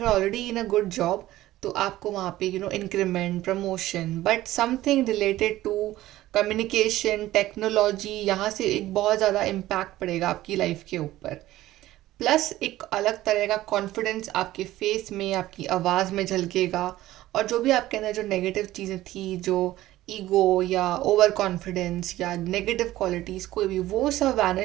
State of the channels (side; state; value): left; quieter; 15.5 dB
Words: you already in a good job तो आपको वहाँ पे increment, promotion, but something related to communication, technology, यहाँ से एक बहुत ज़्यादा इम्पैक्ट पड़ेगा आपकी लाइफ के ऊपर. प्लस एक अलग तरह का कॉन्फिडेंस आपके फेस में, आपकी आवाज़ में झलकेगा. और जो भी आपके अंदर जो नेगेटिव चीज़ें थी, जो ईगो या ओवर कॉन्फिडेंस या नेगेटिव क्वालिटीज़ कोई भी, वो सब